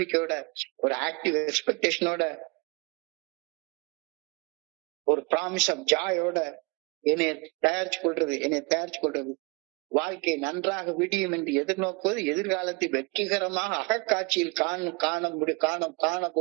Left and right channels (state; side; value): quieter; left; 29.3 dB